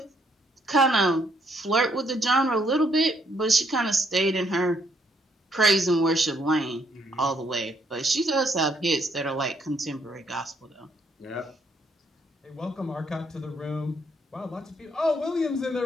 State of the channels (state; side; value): normal; both; correlation 0.71